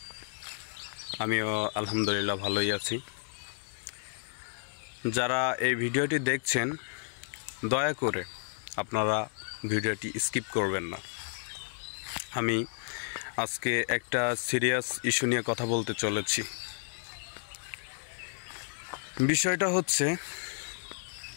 আমিও আলহামদুলিল্লাহ ভালোই আছি। যারা এই ভিডিওটি দেখছেন দয়া করে আপনারা ভিডিওটি স্কিপ করবেন না। আমি আজকে একটা সিরিয়াস ইস্যু নিয়ে কথা বলতে চলেছি। বিষয়টা হচ্ছে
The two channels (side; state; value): right; silent; digital silence